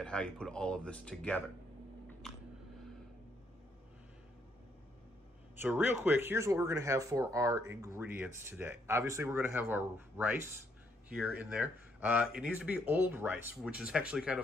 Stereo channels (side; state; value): both; normal; correlation 0.72